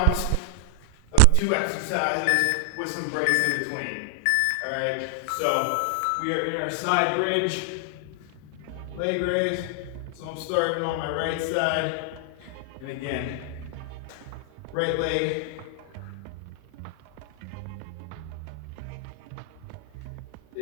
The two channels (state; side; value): different; both; correlation 0.00